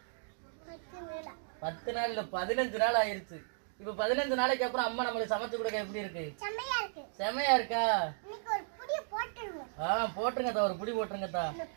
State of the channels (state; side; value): silent; left; digital silence